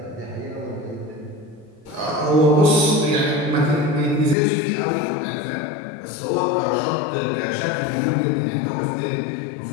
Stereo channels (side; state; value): right; drops out; at 4.4 s